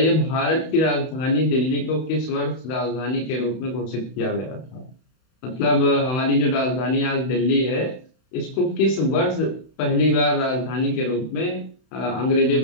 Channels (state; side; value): late; right; 31 ms